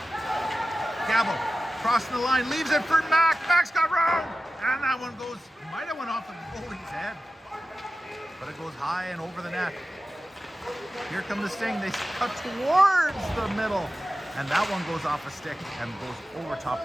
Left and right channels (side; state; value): both; normal; correlation 0.94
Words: Gabo crossing the line, leaves it for Mac. Mac's got room. And that one goes, might have went off the goalie's head. But it goes high and over the net. Here come the Sting. They cut towards the middle. And that one goes off a stick and goes over top